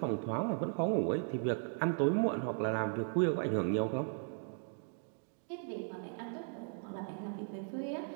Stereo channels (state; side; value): silent; left; 53 dB below the other